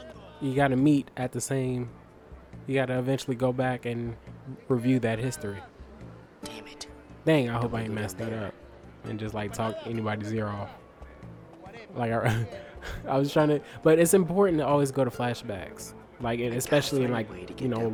You gotta meet at the same. You gotta eventually go back and review that history. Damn it. Dang, I hope I ain't messed that up and just like talk anybody's ear off. Like I was trying to, but it's important to always go to flashbacks, like, and especially in, like, you know,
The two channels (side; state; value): both; identical; correlation 1.00